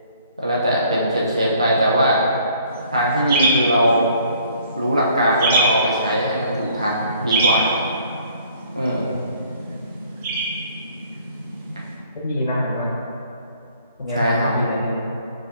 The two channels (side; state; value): both; inverted; correlation -0.58